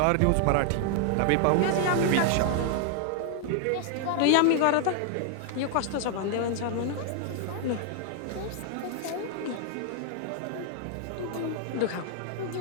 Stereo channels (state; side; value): different; both; correlation 0.00